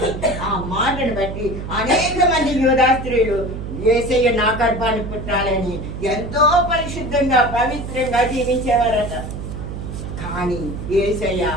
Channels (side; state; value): right; noise; hum, 7 dB below the sound